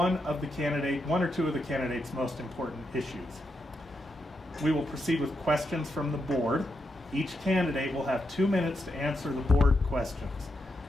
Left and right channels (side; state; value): both; normal; correlation 0.83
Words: or two of the candidate's most important issues. We will proceed with questions from the board. Each candidate will have 2 minutes to answer the board questions.